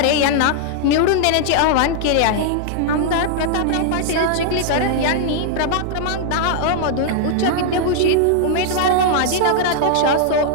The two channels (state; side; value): different; both; correlation -0.01